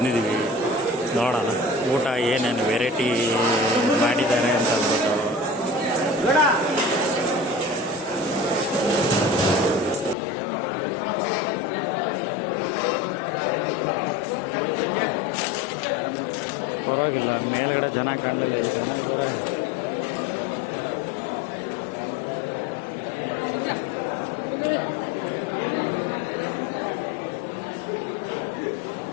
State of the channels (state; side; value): drops out; right; at 10.2 s